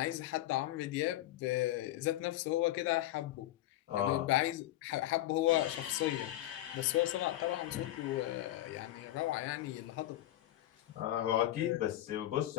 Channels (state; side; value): quieter; right; 14.6 dB